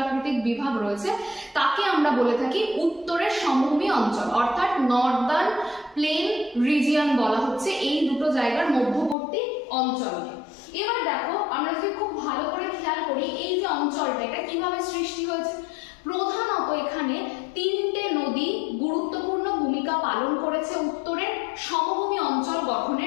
বিভাগ রয়েছে, তাকে আমরা বলে থাকি উত্তরের সমভূমি অঞ্চল, অর্থাৎ নর্দার্ন প্লেন রিজিয়ন বলা হচ্ছে এই দুটো জায়গার মধ্যবর্তী অঞ্চলকে। এবার দেখো আমরা যদি খুব ভালো করে খেয়াল করি এই যে অঞ্চলটা এটা কিভাবে সৃষ্টি হয়েছে। প্রধানত এখানে তিনটে নদী গুরুত্বপূর্ণ ভূমিকা পালন করেছে উত্তরের সমভূমি অঞ্চল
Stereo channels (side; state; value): right; drops out; at 9.2 s